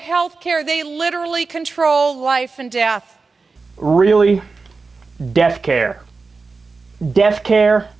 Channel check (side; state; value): left; quieter; 4.2 dB